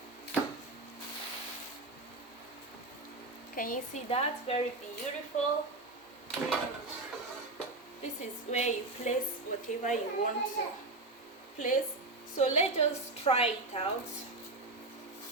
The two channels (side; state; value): left; quieter; 3.0 dB